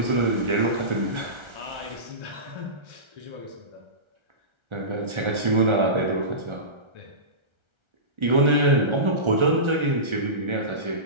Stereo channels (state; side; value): late; left; 1.4 ms